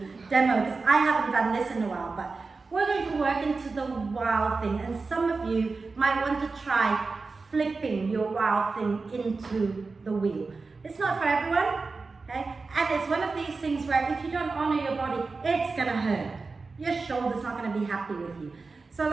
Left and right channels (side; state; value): left; quieter; 4.1 dB